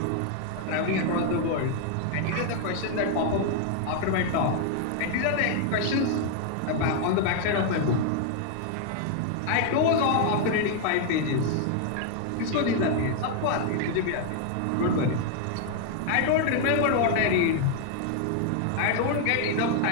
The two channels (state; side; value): different; both; correlation 0.00